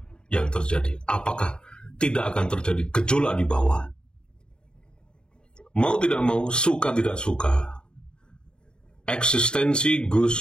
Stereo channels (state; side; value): late; right; 0.049 ms